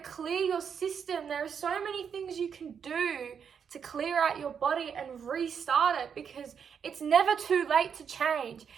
clear your system. There are so many things you can do to clear out your body and restart it, because it's never too late to change.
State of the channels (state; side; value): quieter; left; 7.2 dB